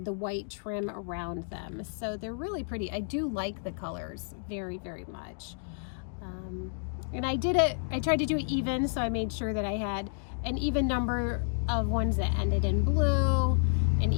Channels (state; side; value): silent; right; digital silence